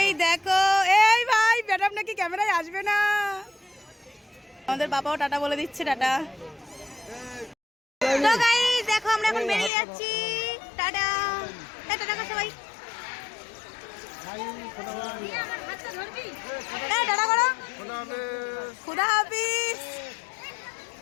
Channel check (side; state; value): right; drops out; at 9.7 s